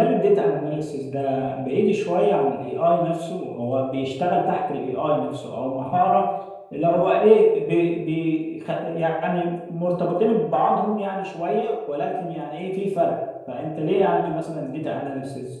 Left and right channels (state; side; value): identical; both; correlation 1.00